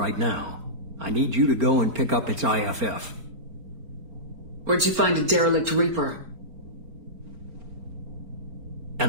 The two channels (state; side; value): late; left; 4.4 ms